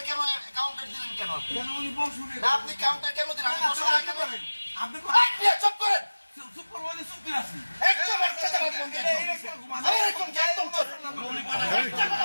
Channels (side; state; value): both; inverted; correlation -1.00